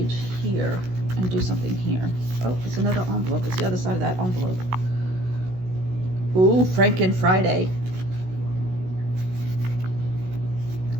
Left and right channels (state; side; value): late; left; 16 ms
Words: here and do something here. Oh, it's another envelope. It's the other side of that envelope. Ooh, Franken Friday.